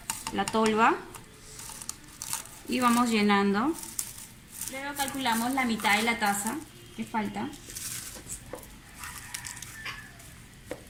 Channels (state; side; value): identical; both; correlation 1.00